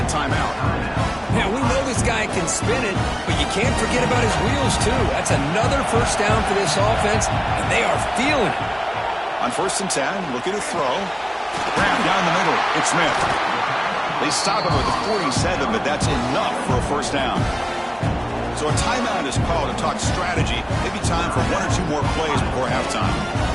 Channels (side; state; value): both; identical; correlation 1.00